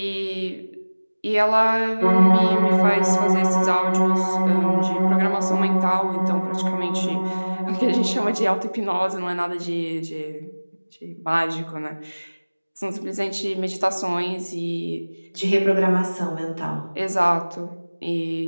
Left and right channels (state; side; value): inverted; both; correlation -1.00